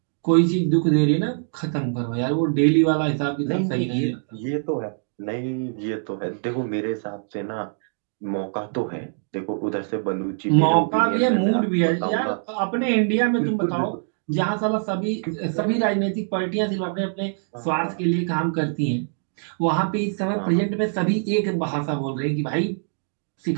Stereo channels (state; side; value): silent; left; digital silence